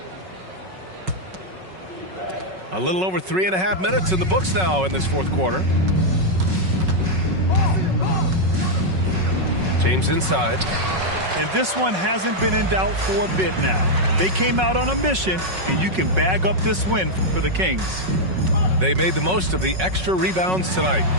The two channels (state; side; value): late; left; 5.4 ms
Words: A little over 3.5 minutes in the books now in this fourth quarter. James inside. And this one hasn't been in doubt for a bit now. They came out on a mission, and you can bag up this win for the Kings. They made the most of the extra rebounds tonight.